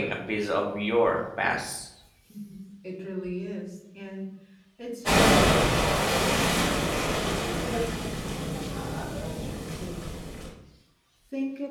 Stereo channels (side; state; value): both; identical; correlation 1.00